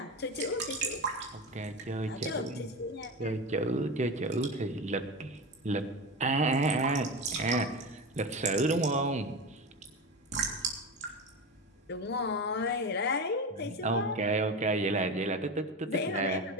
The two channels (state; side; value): normal; both; correlation 0.23